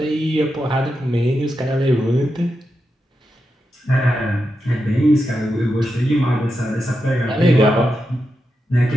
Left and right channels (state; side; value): normal; both; correlation 0.87